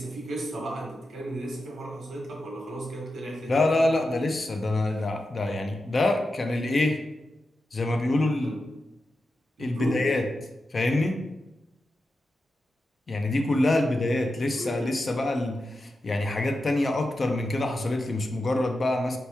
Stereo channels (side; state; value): both; normal; correlation 0.90